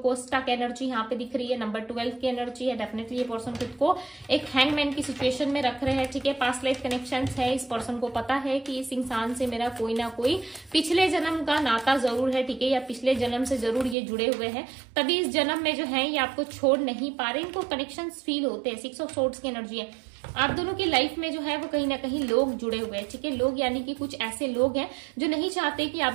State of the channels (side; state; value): left; drops out; at 14.0 s